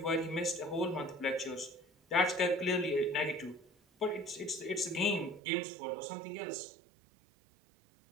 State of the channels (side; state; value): left; drops out; at 5.4 s